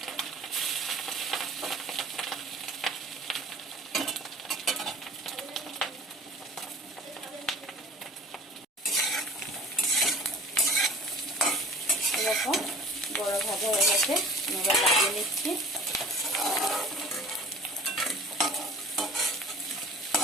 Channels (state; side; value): normal; both; correlation 0.43